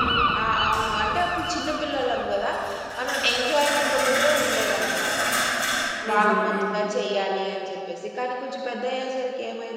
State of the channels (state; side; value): identical; both; correlation 1.00